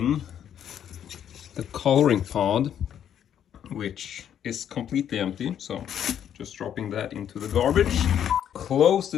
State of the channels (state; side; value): quieter; right; 9.5 dB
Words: the coloring pod, which is completely empty. So just dropping that into the garbage. Close